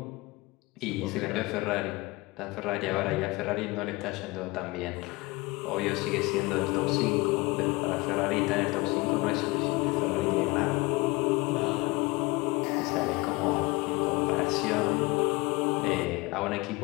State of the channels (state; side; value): quieter; right; 23.4 dB